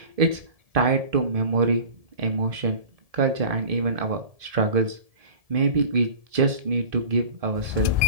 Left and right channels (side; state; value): left; late; 1.7 ms